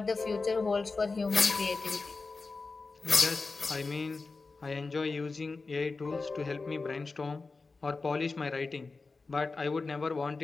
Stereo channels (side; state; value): right; quieter; 4.0 dB